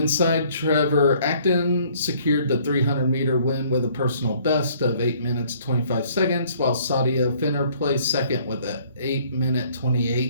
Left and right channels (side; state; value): both; inverted; correlation -0.60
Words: side, Trevor Acton secured the 300-meter win with a personal best of 8 minutes 25 seconds, while Sadia Finner placed second with an 8-minute